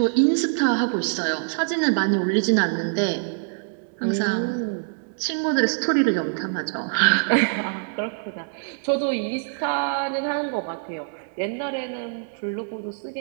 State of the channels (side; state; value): left; silent; digital silence